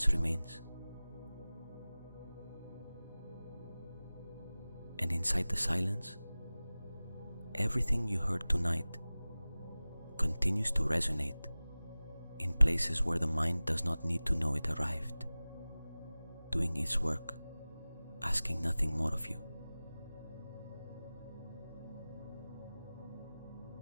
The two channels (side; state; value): both; inverted; correlation -0.98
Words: remains. And inside the silence, everything you heard tonight continues to resonate in places where the mind does not need to know it arrived, doing its work, asking nothing more of you.